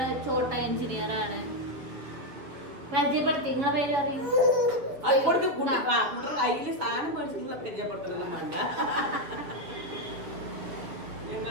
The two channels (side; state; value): left; late; 7.3 ms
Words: ചോട്ട എഞ്ചിനീയർ ആണ്. പരിചയപ്പെടുത്തി, നിങ്ങളെ പേര് അറിയും.